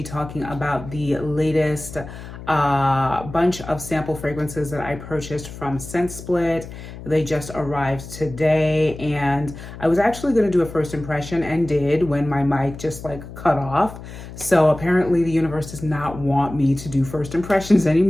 talking about the latest bunch of sample fragrances that I purchased from ScentSplit. They just arrived today, and I was actually going to do a first impression and did when my mic just cut off. So apparently the universe does not want me to do first impressions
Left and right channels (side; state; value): left; noise; hum, 13 dB below the sound